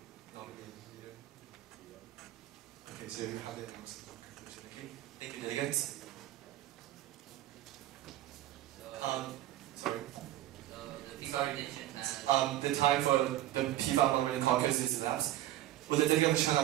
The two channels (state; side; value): quieter; left; 14.2 dB